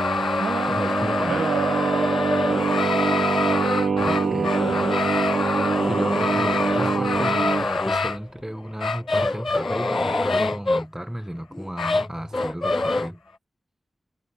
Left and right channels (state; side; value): normal; both; correlation 0.82